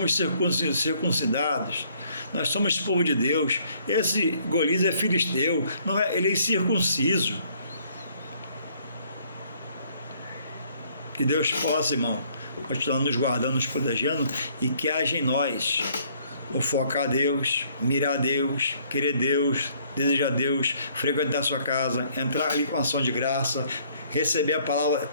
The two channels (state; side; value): inverted; both; correlation -0.63